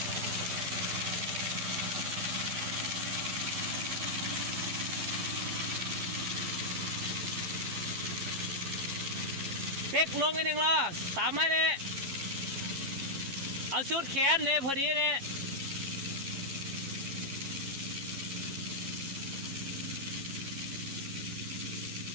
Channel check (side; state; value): left; late; 11 ms